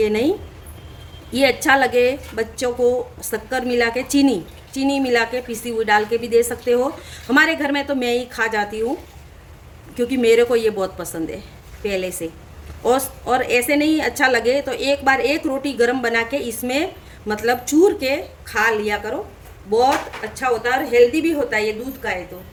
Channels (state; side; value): identical; both; correlation 1.00